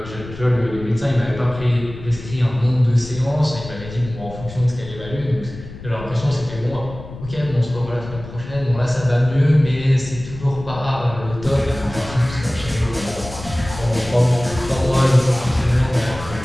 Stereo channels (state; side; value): noise; left; rumble, 13 dB below the sound